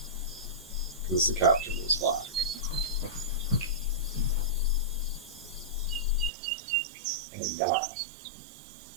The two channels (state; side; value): drops out; left; at 6.3 s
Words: the captain was black. And